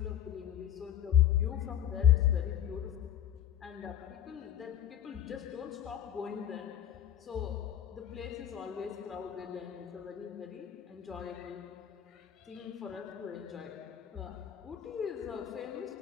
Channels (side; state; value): right; quieter; 10.6 dB